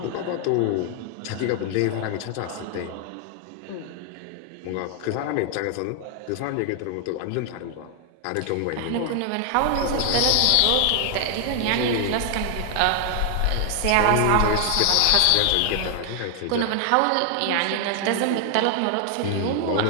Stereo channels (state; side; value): different; both; correlation 0.00